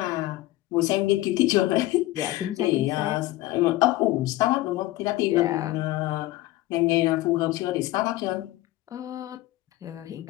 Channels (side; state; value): right; quieter; 17.3 dB